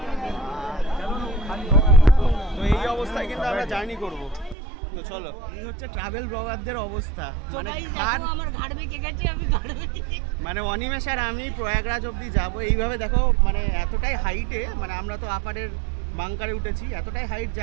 তো এই অবস্থায় কিন্তু আমরা জার্নি করব। তো চলো, এই হচ্ছে ট্রাভেল ব্লগারদের অবস্থা, মানে অনিমেষ আর আমি প্রয়াগরাজ অবধি যাব। এইভাবে দেখো মানে এতটাই হাইটে, মানে আমরা তো আপারের বাংকারে উঠেছি, এতটাই হাইট যে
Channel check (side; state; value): left; drops out; at 4.5 s